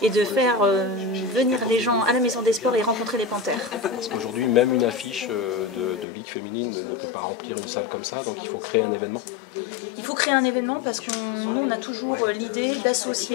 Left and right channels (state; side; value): drops out; right; at 6.1 s